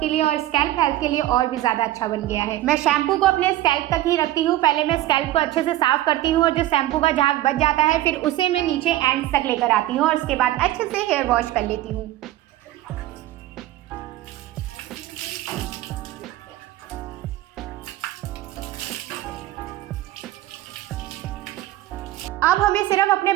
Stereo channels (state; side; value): quieter; left; 15.1 dB